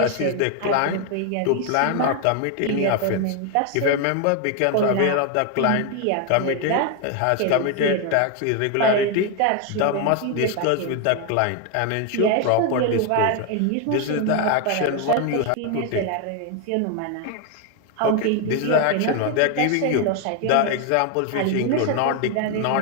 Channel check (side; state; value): both; different; correlation 0.01